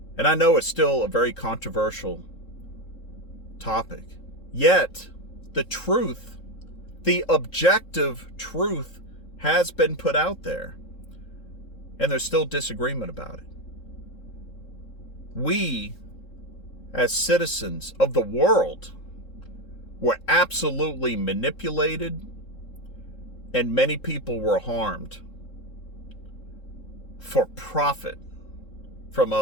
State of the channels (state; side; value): late; right; 3.7 ms